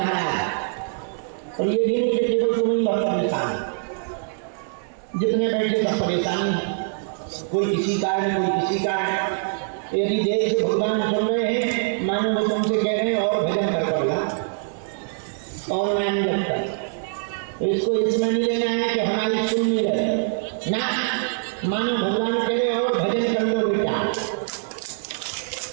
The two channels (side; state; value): left; silent; digital silence